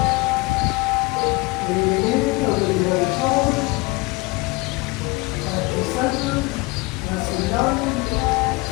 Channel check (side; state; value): right; quieter; 24.0 dB